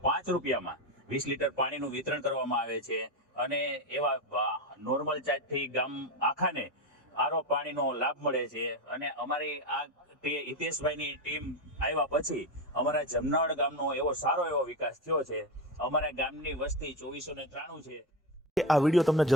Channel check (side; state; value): both; normal; correlation 0.16